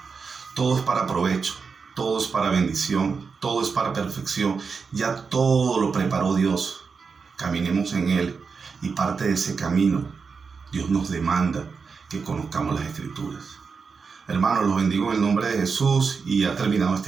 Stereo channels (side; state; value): left; quieter; 5.2 dB